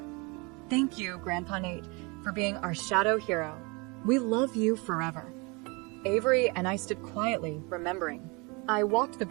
Thank you, Grandpa Nate, for being our shadow hero. We love you forever. Avery and I stood quietly, remembering. I walked the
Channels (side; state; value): left; quieter; 28.7 dB